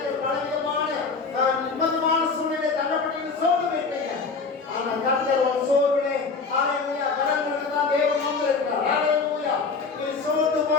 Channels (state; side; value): quieter; right; 4.6 dB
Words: பல விதமான நிம்மதியான சூழ்நிலை தள்ளப்பட்டு சோர்ந்து போயிருப்பீங்க. ஆனா கர்த்தர் ஒரு சோர்விலே ஹல்லேலூயா கடவுளுக்கு தான் தேவன் வந்திருக்கிறார். ஹல்லேலூயா. நீ சோர்ந்து